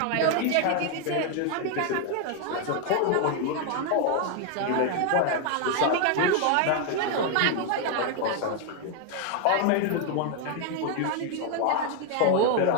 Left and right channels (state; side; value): different; both; correlation 0.00